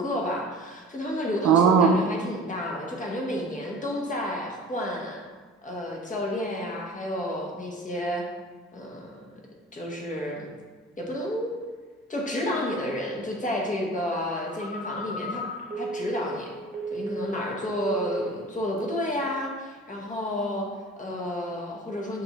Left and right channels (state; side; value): normal; both; correlation 0.41